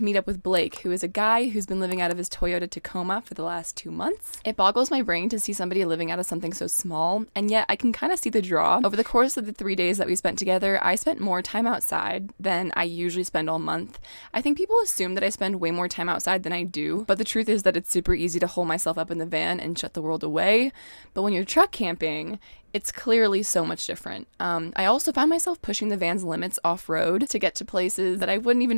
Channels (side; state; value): both; inverted; correlation -1.00